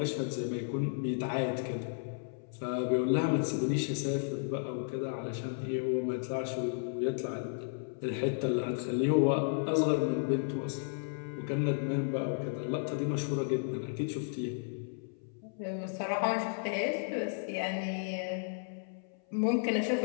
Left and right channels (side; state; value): right; silent; 55 dB below the other